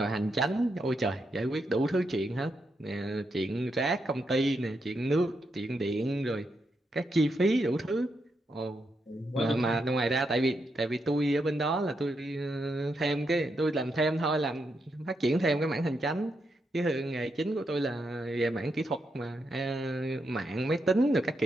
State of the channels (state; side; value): normal; both; correlation 0.82